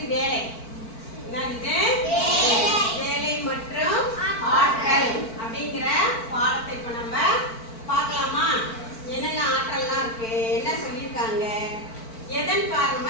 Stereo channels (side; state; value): right; late; 4.5 ms